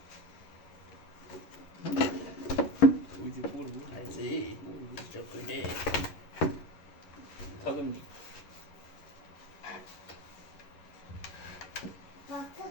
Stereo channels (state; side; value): late; right; 11 ms